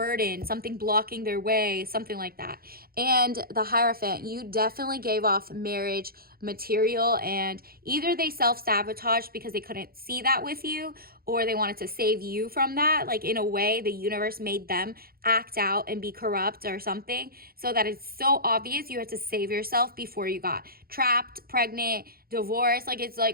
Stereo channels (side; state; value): left; late; 0.44 ms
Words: something blocking their way, something like that. And the Hierophant, you definitely gave off marriage material, and either they self-sabotaged because they couldn't see that with you, or they wanted to save you from that. Like, in a way, the universe made them act out and be corrupt or something, so that it's so obvious you had to save yourself before you got trapped, pregnant, divorced. Like, it's